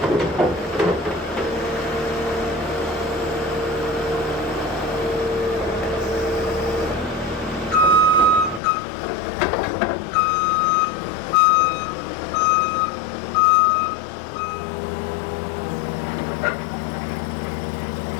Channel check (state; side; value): drops out; right; at 8.6 s